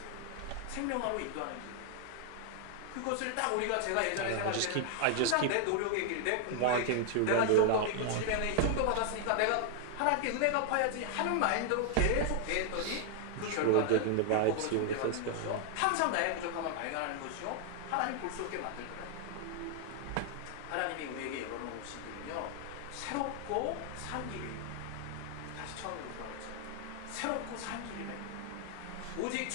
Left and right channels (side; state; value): both; different; correlation 0.00